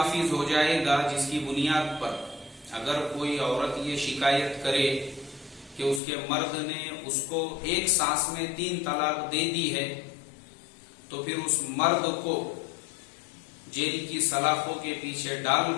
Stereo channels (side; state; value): right; drops out; at 6.0 s